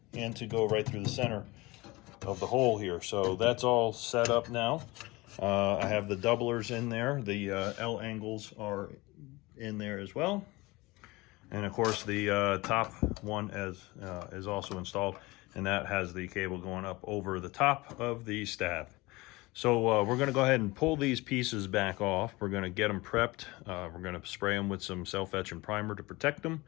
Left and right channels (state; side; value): quieter; right; 22.1 dB